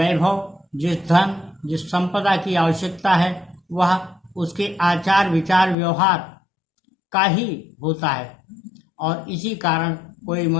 जिस धन, जिस संपदा की आवश्यकता है वह उसके आचार विचार व्यवहार का ही होता है। और इसी कारण कोई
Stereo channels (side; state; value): right; drops out; at 5.8 s